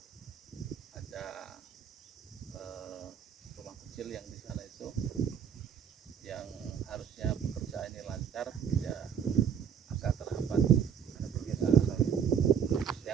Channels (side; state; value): left; quieter; 7.8 dB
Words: ada rumah kecil yang di sana itu yang harusnya pekerjaan ini lancar ya agak terhambat karena pergeseran.